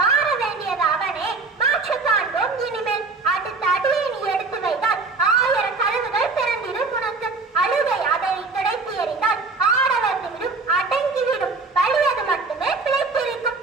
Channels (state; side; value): quieter; left; 3.9 dB